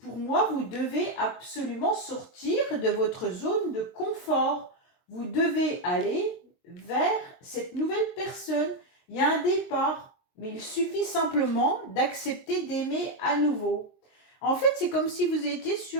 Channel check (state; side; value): late; right; 23 ms